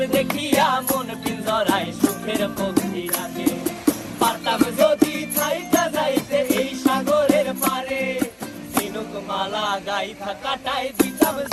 দেখিয়া মন পিঞ্জরায় সুখের পক্ষী রাখে। পারতাম যদি থাইকা যাইতে এই সাগরের পারে, ঝিনুক মালা গাইথা কাটাই দিতাম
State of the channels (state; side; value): identical; both; correlation 1.00